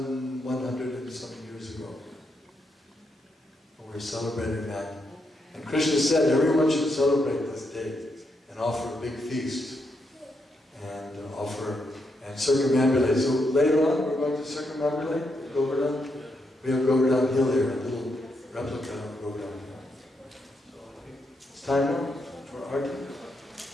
and some years ago. We're celebrating that. And Krishna said everyone should celebrate this day and offer a big feast and circumambulate. So later on we're going to circumambulate Govardhan. We have Govardhan Hill here, a little replica of Govardhan Hill. So I think it's time now for arti.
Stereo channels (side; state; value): both; normal; correlation 0.80